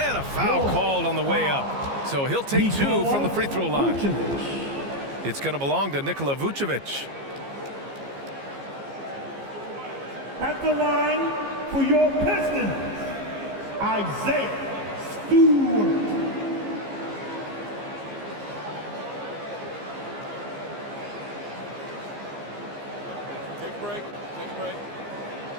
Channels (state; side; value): late; left; 15 ms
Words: a foul called on the way up. So he'll take 2 from the free throw line. It's going to belong to Nikola Vucevic. At the line for your Pistons, Isaiah Stewart. Take a break. Take a break.